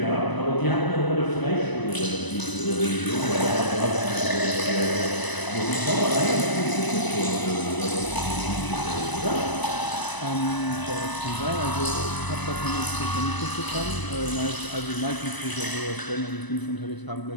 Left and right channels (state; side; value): late; right; 1.0 ms